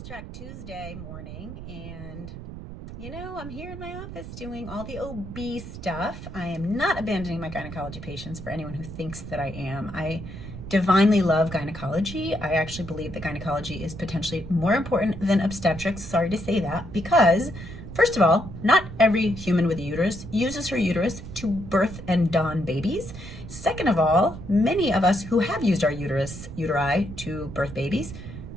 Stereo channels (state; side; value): noise; right; rumble, 11 dB below the sound